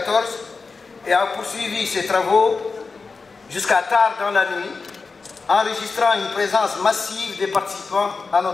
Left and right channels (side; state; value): right; quieter; 4.4 dB